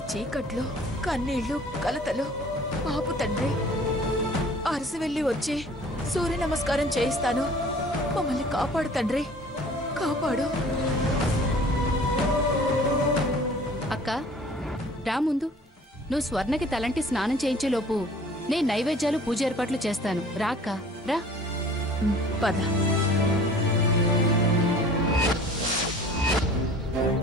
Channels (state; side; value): normal; both; correlation 0.48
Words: చీకట్లో కన్నీళ్లు కలతలు ఆపు తండ్రి. అరసి వెళ్ళి వచ్చి సూర్య నమస్కారం చేయిస్తాను. మమ్మల్ని కాపాడు తండ్రి, కాపాడు. అక్క రా ముందు. నువ్వు స్వర్ణకి తలంటి స్నానం చేయించేలోపు నేను నైవేద్యాలు పూజ ఏర్పాట్లు చేస్తాను రాక్క రా. పద.